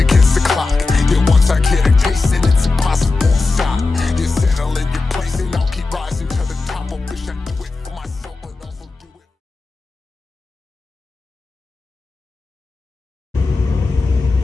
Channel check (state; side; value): quieter; right; 3.7 dB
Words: the clock. Yeah, once I get a taste, and it's impossible to stop. You settle in your place, and I'll keep rising to the top. I wish I do it for myself, but also do it.